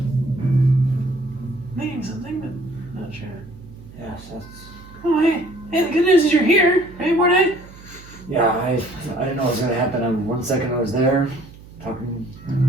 Meaning something, but not sure. Yes, that's. Oh, hey, the good news is you're here, right, Mordai? Yeah, I didn't know what was gonna happen. 1 second I was there, talking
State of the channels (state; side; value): noise; right; hum, 20 dB below the sound